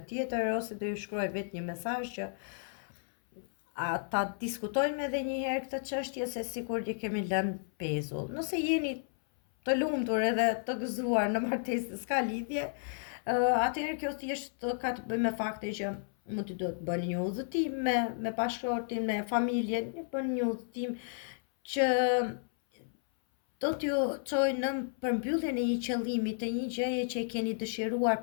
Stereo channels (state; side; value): silent; right; 56 dB below the other